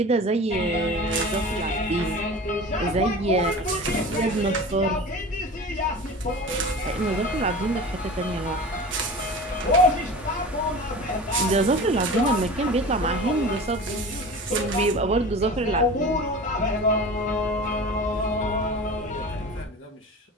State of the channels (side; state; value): both; normal; correlation 0.35